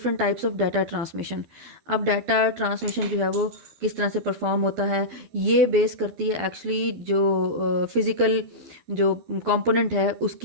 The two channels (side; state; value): left; late; 12 ms